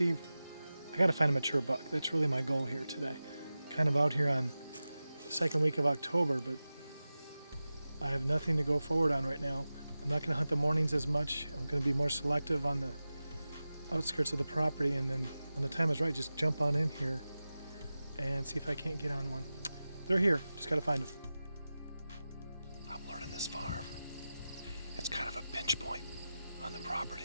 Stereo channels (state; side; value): inverted; both; correlation -0.95